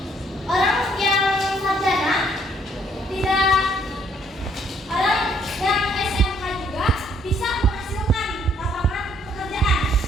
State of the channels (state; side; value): normal; both; correlation 0.66